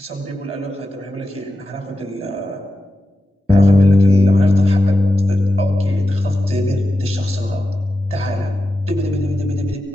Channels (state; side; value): normal; both; correlation 0.90